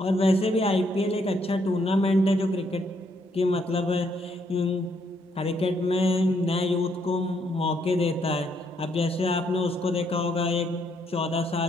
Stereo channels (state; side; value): normal; both; correlation 0.73